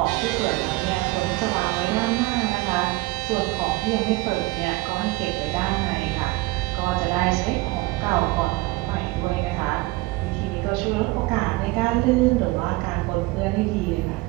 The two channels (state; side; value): quieter; left; 21.1 dB